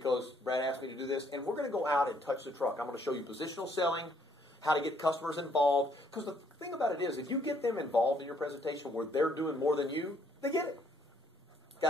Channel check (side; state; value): both; normal; correlation 0.67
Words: Brad asked me to do this, and we're going to go out and touch the truck. I'm going to show you positional selling, how to get customers involved. Because the thing about it is, if you get them involved in your presentation where they're doing more than you, they get it. Got